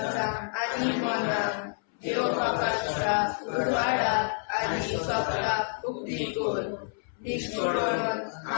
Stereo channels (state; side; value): silent; right; 59 dB below the other